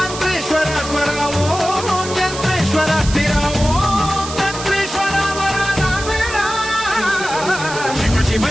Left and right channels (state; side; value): noise; right; hiss, 10 dB below the sound